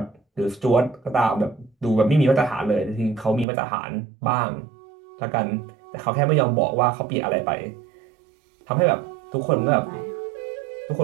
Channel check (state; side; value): drops out; left; at 3.5 s